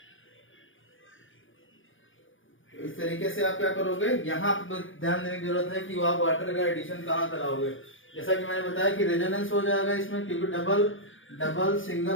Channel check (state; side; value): late; right; 0.57 ms